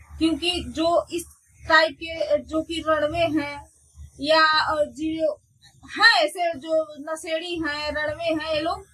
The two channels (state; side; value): identical; both; correlation 1.00